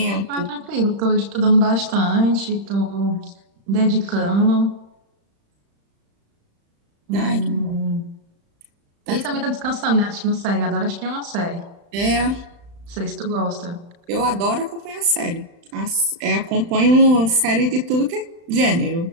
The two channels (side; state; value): left; late; 35 ms